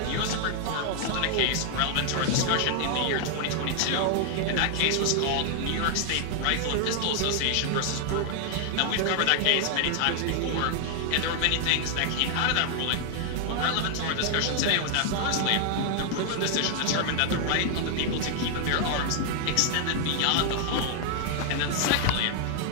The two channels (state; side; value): different; both; correlation 0.00